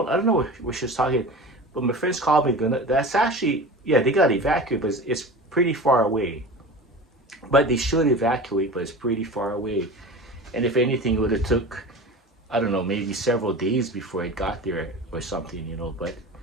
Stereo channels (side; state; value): both; normal; correlation 0.33